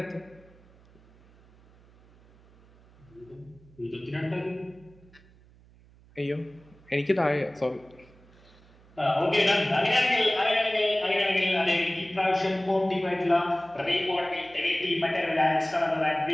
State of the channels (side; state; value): right; noise; hum, 27 dB below the sound